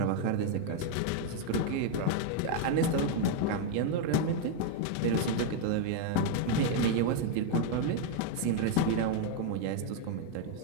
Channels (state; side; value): different; both; correlation 0.00